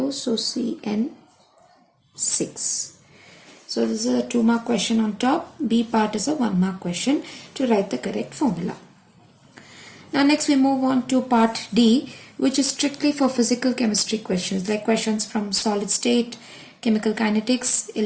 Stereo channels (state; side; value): identical; both; correlation 1.00